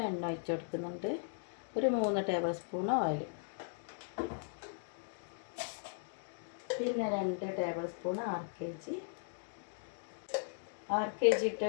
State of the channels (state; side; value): silent; right; digital silence